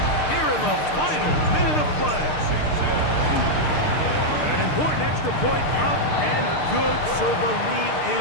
Final minute of play. An important extra point up and good, so the lead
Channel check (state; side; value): late; right; 6.6 ms